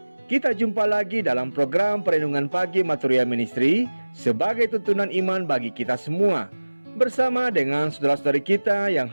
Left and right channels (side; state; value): both; inverted; correlation -1.00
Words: Kita jumpa lagi dalam program Perenungan Pagi Maturia Ministry sebagai tuntunan iman bagi kita semua. Bersama dengan saudara-saudari kita yang